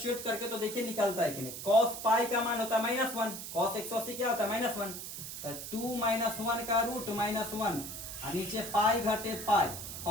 करके, तो देखिए निकलता है कि नहीं। कॉस पाई का मान होता है -1, कॉस 180 क्या होता है -1, तो 2 - 1 का रूट -1 और नीचे पाई घटे पाई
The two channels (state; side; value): noise; right; hiss, 8 dB below the sound